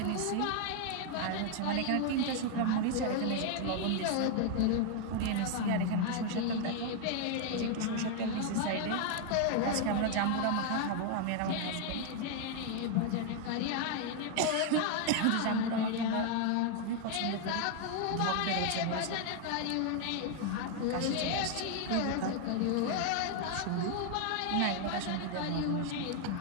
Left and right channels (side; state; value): both; different; correlation 0.00